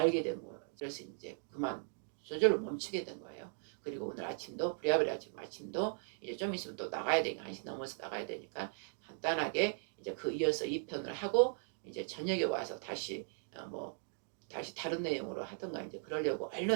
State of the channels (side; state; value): left; silent; 52 dB below the other